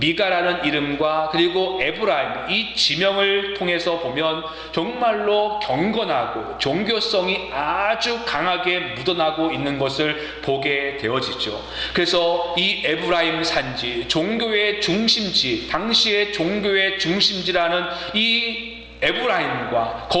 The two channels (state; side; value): identical; both; correlation 1.00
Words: 이름과 그리고 에브라임, 이 지명을 통해서 보면 정말로 경건하고 종교성이 아주 강하게 묻어나고 있는 것을 보게 되어지죠. 그래서 이 에브라임 산지, 종교의 중심지, 당시의 종교의 중심지라는 이 에브라임과